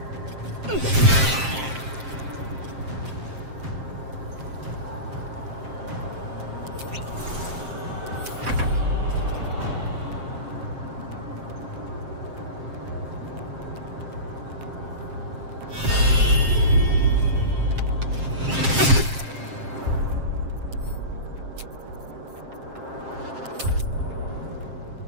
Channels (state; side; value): late; left; 7.5 ms